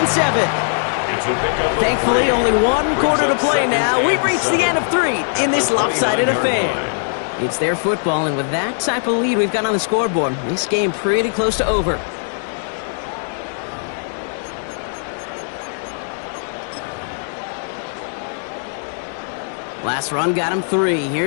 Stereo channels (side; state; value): right; silent; digital silence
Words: 7. Thankfully, only 1 quarter to play now. We've reached the end of 3 in this lopsided affair. It's their football, and with that type of lead we've got on the scoreboard, this game pretty close to over. Last run got him 3.